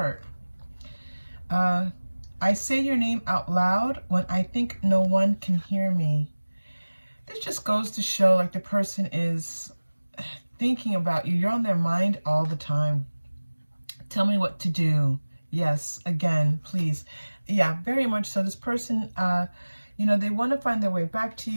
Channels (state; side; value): inverted; both; correlation -1.00